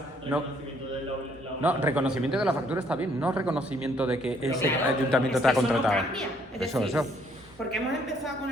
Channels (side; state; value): both; normal; correlation 0.66